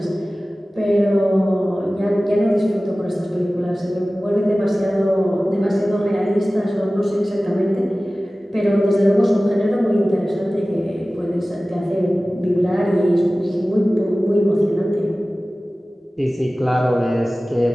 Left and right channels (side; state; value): both; normal; correlation 0.97